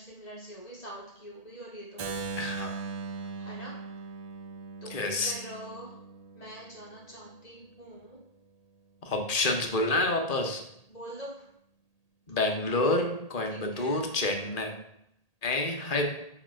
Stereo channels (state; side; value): late; right; 1.8 ms